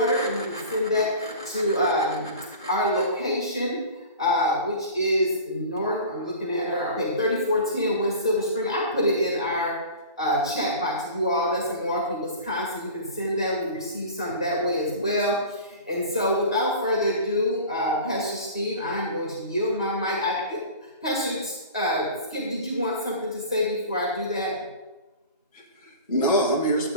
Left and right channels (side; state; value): both; inverted; correlation -0.38